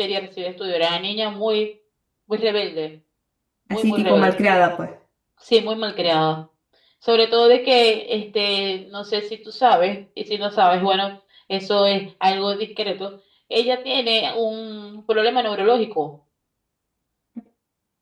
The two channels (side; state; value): both; identical; correlation 1.00